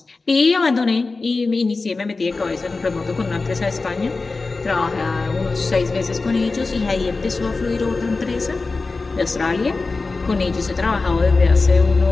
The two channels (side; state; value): right; quieter; 3.8 dB